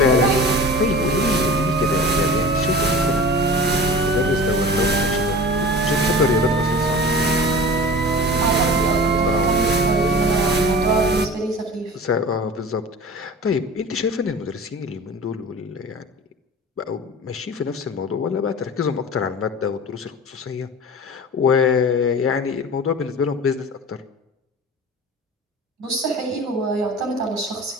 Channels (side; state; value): both; normal; correlation 0.36